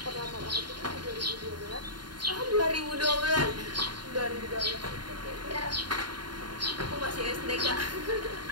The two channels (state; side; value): late; left; 0.71 ms